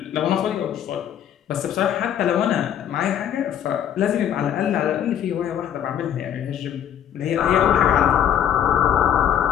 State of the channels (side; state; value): right; quieter; 9.7 dB